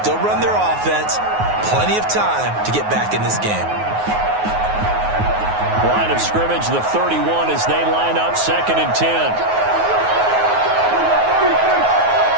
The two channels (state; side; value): late; left; 9.4 ms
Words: run their offense. Plenty of time to get back in this game. Line of scrimmage, the 31, as they line up 2nd and 10.